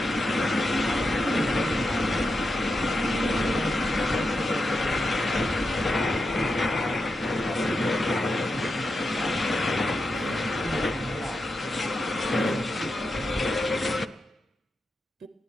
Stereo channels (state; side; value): normal; both; correlation 0.87